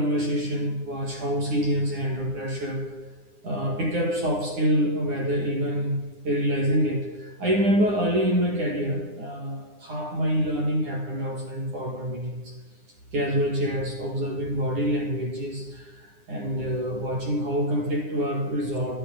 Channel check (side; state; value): left; late; 9.8 ms